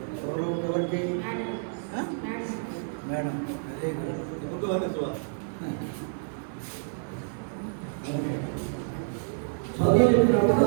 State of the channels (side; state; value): left; silent; 59 dB below the other